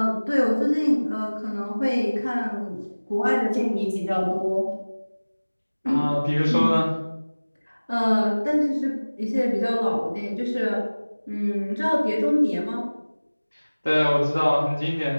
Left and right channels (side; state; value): both; inverted; correlation -1.00